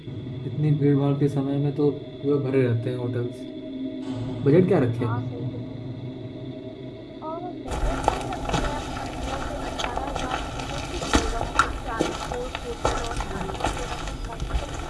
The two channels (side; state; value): both; identical; correlation 1.00